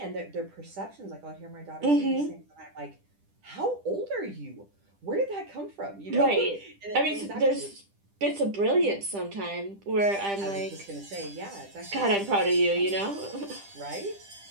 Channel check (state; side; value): late; left; 10 ms